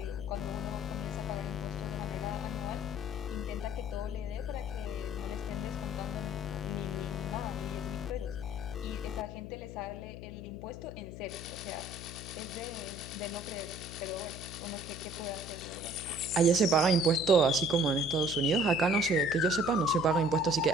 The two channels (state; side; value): noise; left; hum, 11 dB below the sound